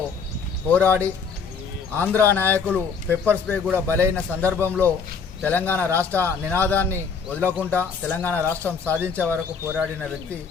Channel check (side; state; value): right; quieter; 5.7 dB